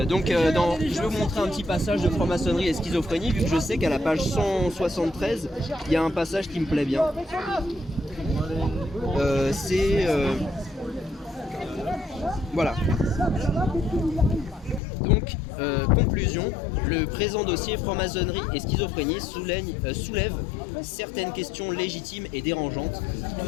vais vous montrer un petit passage de franc-maçonnerie et schizophrénie vu que je sais qu'à la page 173 il y a un passage qui me plaît bien. Voilà. Donc, conclusion, le présent dossier franc-maçonnerie et schizophrénie soulève certaines questions légitimes et dérangeantes. Tout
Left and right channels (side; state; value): right; drops out; at 14.8 s